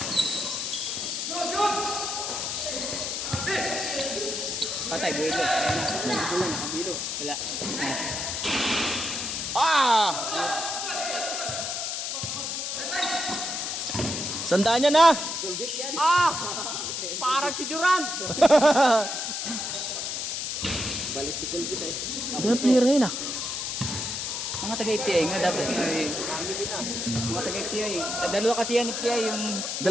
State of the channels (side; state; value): left; noise; hiss, 3 dB below the sound